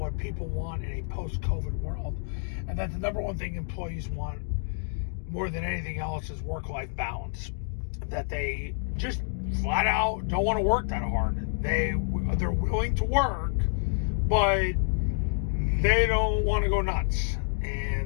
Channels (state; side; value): silent; right; digital silence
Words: people want in a post-COVID world, and that the number one thing employees want more than anything else is work-life balance. That they just flat out don't want to work that hard. They're willing to work, but they don't want to go nuts,